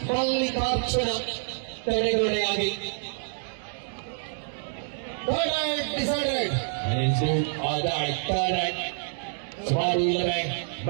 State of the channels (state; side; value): silent; left; 60 dB below the other